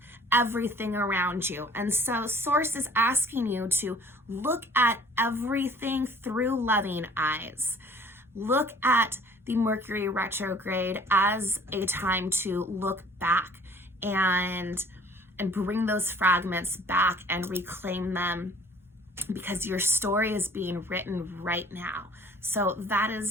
everything around you. And so Source is asking you to look at everything through loving eyes. Look at the Mercury retrograde as a time to look back and bring those fragments back and reclaim them, because your story is being written right now. So that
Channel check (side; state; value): both; normal; correlation 0.52